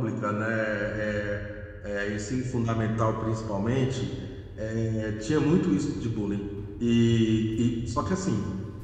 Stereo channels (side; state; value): both; identical; correlation 1.00